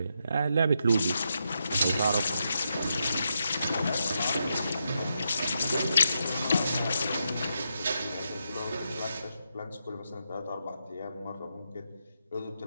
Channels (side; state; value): both; inverted; correlation -0.83